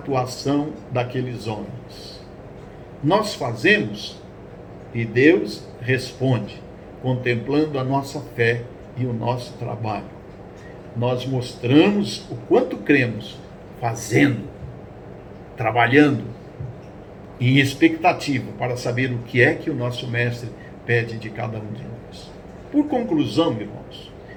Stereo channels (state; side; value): identical; both; correlation 1.00